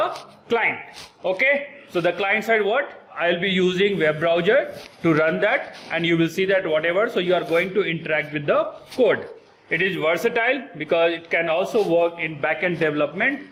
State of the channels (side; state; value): both; identical; correlation 1.00